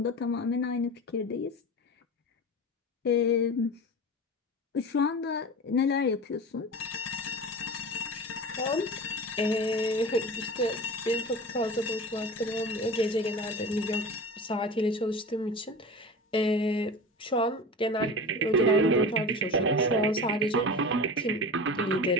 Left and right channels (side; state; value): both; normal; correlation 0.32